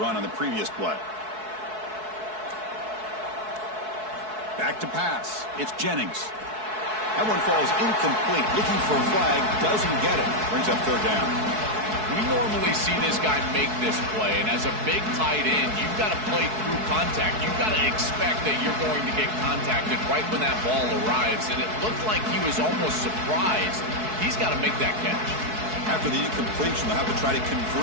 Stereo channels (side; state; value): left; late; 4.6 ms